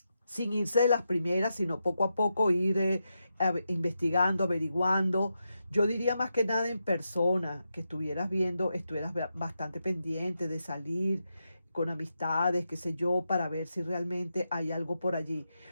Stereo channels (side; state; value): both; inverted; correlation -0.86